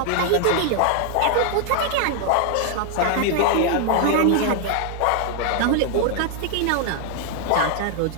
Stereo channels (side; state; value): both; different; correlation 0.00